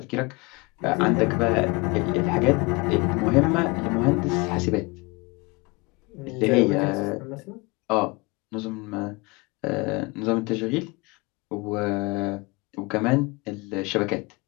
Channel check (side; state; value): right; quieter; 26.2 dB